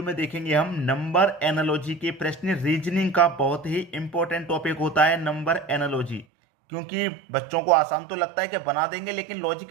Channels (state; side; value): drops out; left; at 6.2 s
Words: में देखेंगे हम नंबर एनालॉजी के प्रश्न। रीजनिंग का बहुत ही इंपॉर्टेंट टॉपिक होता है नंबर एनालॉजी, क्योंकि बच्चों को आसान तो लगता है कि बना देंगे, लेकिन लॉजिक